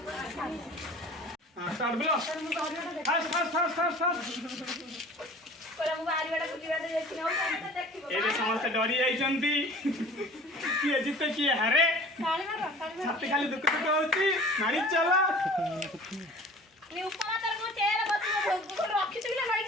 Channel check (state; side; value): normal; both; correlation 0.45